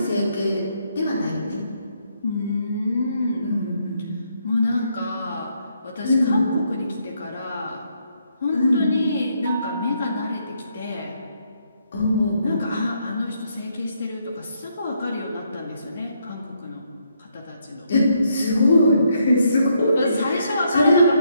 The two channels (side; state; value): both; inverted; correlation -0.75